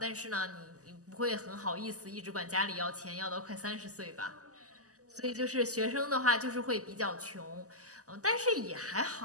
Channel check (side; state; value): left; late; 0.66 ms